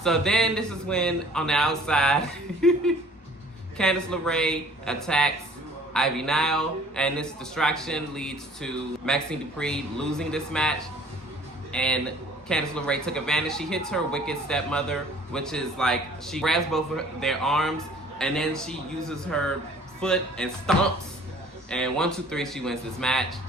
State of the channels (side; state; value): both; normal; correlation 0.53